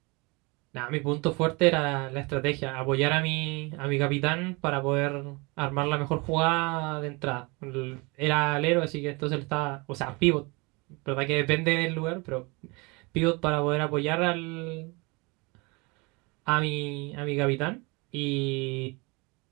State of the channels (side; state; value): left; quieter; 27.3 dB